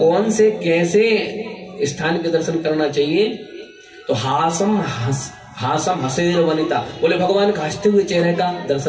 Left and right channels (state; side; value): identical; both; correlation 1.00